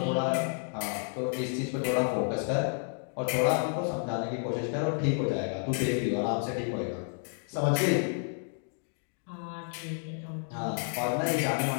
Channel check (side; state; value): right; silent; 57 dB below the other